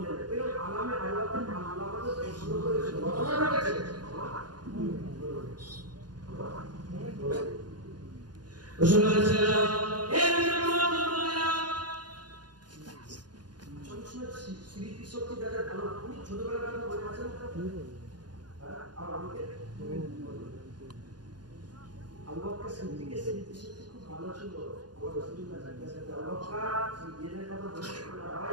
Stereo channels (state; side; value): late; left; 0.70 ms